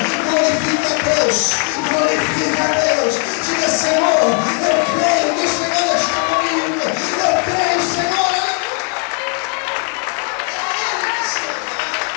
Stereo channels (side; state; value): right; quieter; 37.7 dB